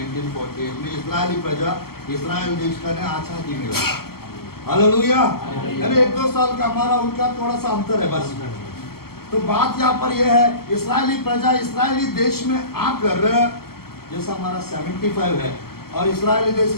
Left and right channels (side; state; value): right; late; 0.95 ms